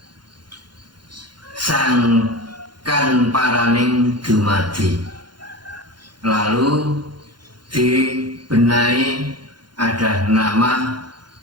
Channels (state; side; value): late; left; 0.71 ms